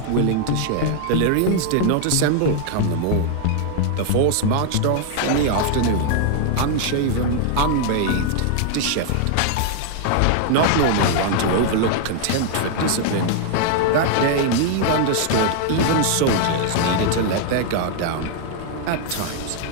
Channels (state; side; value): different; both; correlation 0.00